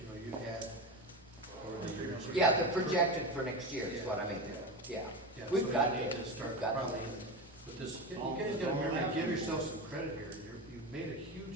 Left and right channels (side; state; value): both; normal; correlation 0.21